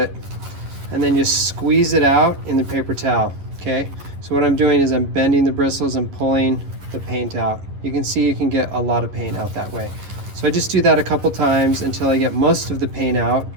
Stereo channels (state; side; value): late; left; 11 ms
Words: and then just squeeze it out in the paper towel, okay? So what I'm doing is I'm bending the bristles and pulling the paint out. You can see you can get a lot of paint out that way. So I just do that a couple times until I get most of the paint out,